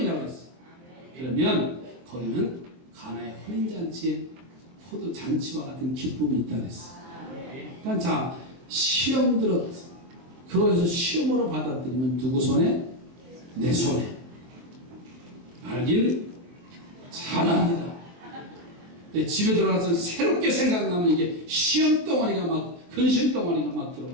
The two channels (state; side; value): late; left; 23 ms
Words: 했어요. 그러면 거기는 가나의 혼인잔치에 포도잔치와 같은 기쁨이 있다 그랬어요. 그러니까 자 시험 들었 그것을 시험으로 받아들이면 누구 손에? 내 손에. 알길 잘합니다. 집에 들어가서 새롭게 생각나면 이게 시험 덩어리가 막 근심 덩어리가 막